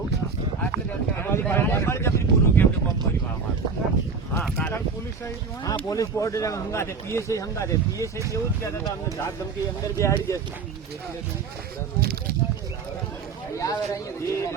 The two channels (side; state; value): left; quieter; 5.1 dB